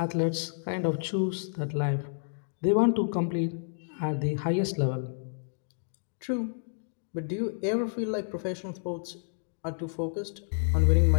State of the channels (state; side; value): silent; right; digital silence